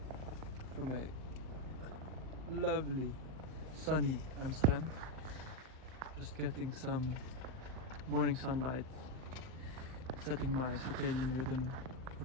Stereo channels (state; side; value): late; left; 39 ms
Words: from a lovely sunny Amsterdam. Just getting some morning sunlight, setting my circadian rhythm